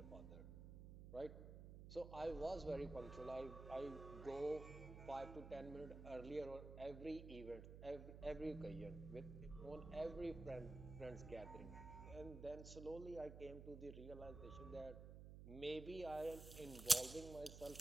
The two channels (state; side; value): noise; right; hum, 10 dB below the sound